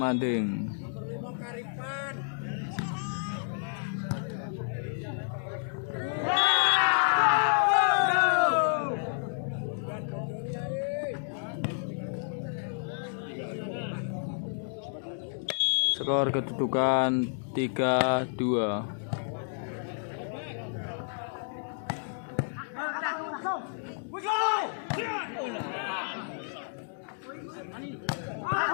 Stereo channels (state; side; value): silent; right; digital silence